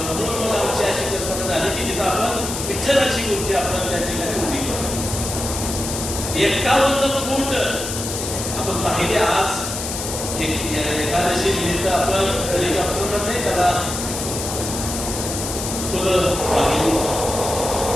म्हणून मला आमची अशी कल्पना झाली की तिथं आपण विठ्ठलाची मूर्ती आपण त्या ठिकाणी उभी करू. 51 फूट आपण पाहिले. आज एकादशी निमित्त आपण हेलिकॉप्टरनं नाही त्याला फुलं पाहिली.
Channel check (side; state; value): left; noise; hiss, 5 dB below the sound